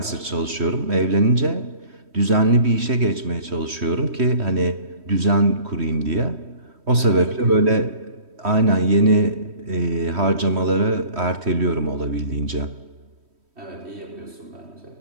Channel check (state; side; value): late; left; 3.1 ms